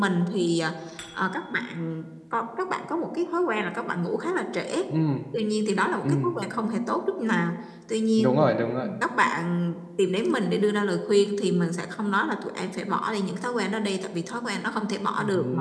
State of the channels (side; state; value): both; identical; correlation 1.00